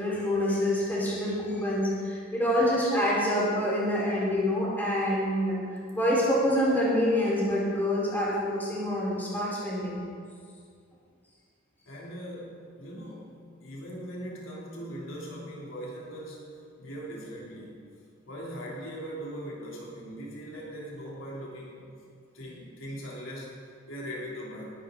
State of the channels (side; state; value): both; normal; correlation 0.46